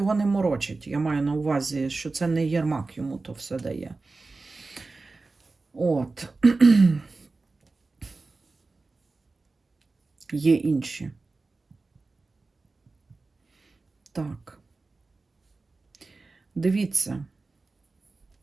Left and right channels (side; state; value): left; quieter; 3.7 dB